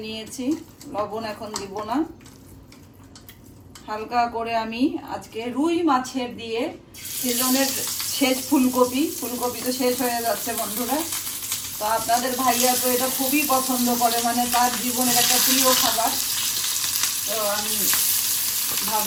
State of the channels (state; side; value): identical; both; correlation 1.00